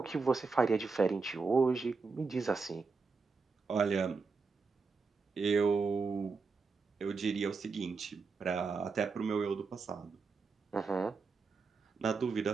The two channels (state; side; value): quieter; left; 4.5 dB